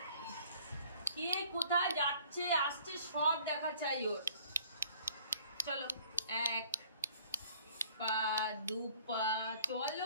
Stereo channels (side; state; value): both; inverted; correlation -0.55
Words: কে কোথায় যাচ্ছে আসছে সব দেখা চাই ওর। চলো 1 পা 2 পা